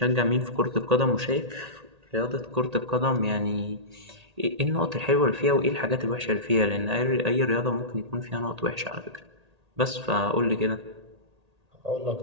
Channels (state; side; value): late; left; 1.8 ms